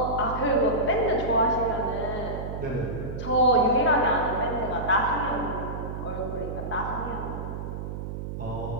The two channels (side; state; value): right; noise; hum, 6 dB below the sound